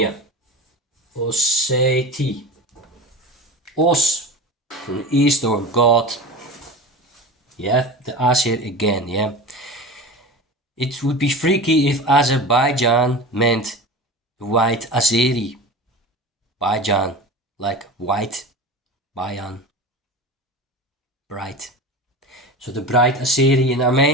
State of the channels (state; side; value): normal; both; correlation 0.31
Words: Osseti. Os, from the east, or God. You have the Asir again, yeah? It would be freaky if Azerbaijan meant white Azeri. Bajan, like white, Bayan, bright. So the bright Azeri in